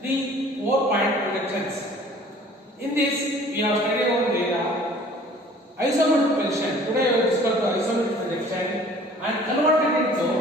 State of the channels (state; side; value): normal; both; correlation 0.51